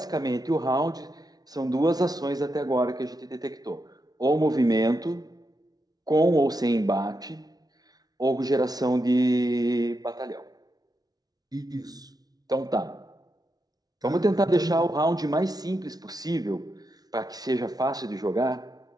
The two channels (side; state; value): left; late; 0.19 ms